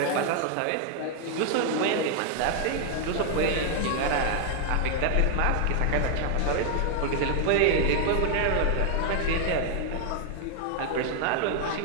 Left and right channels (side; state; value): both; different; correlation 0.00